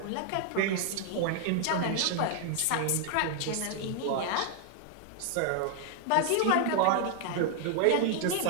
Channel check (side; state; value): both; different; correlation 0.00